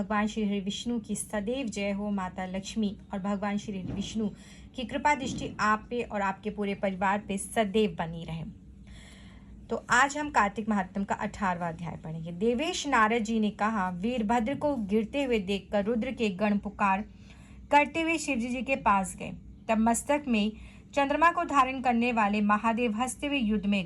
श्री हरि विष्णु की सदैव जय हो। माता लक्ष्मी और भगवान श्री हरि विष्णु की कृपा दृष्टि आप पे और आपके पूरे परिवार पे सदैव बनी रहे। तो आज हम कार्तिक महात्म का 18वां अध्याय पढ़ेंगे। देवेश नारद जी ने कहा, वीरभद्र को गिरते हुए देखकर रुद्र के गण पुकार करते हुए शिवजी जी के पास गए। तब मस्तक में चंद्रमा को धारण करने वाले महादेव हंसते हुए युद्ध में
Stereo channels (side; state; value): both; identical; correlation 1.00